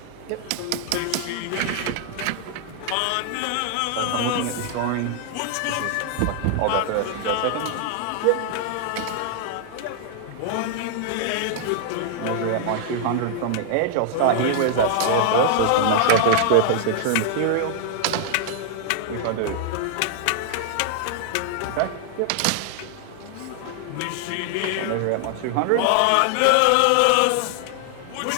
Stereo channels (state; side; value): different; both; correlation 0.00